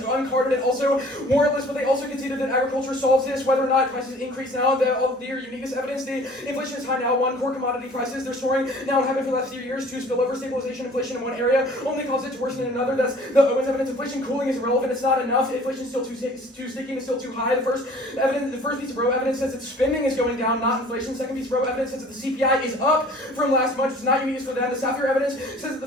and also warrantless, but they also conceded that agriculture solves this. Whether or not prices increase now, their uniqueness evidence. The inflation is high now. 1, core commodity prices. They're soaring now and have been for the last few years. 2, spillover stabilization. Inflation in one area only causes it to worsen in another. That's the Owens evidence. Inflation cooling is irrelevant. It's not enough. Inflation is still too sticky. It's still too high. The first piece of row evidence says that spending is going down, not inflation. Second piece of row evidence says that the CPI is up from last month. It's not unique for them. The Sapphire evidence says that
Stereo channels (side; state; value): both; normal; correlation 0.50